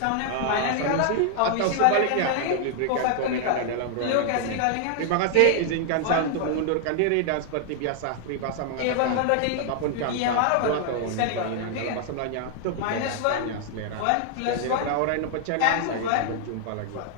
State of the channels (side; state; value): both; different; correlation 0.00